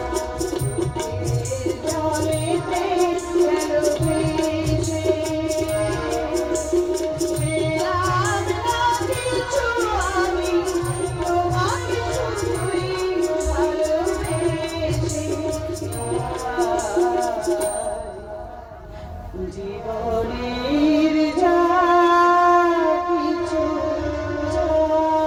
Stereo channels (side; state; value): both; identical; correlation 1.00